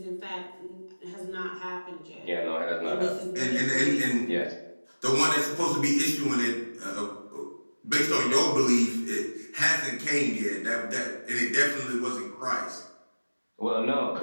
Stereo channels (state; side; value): inverted; both; correlation -1.00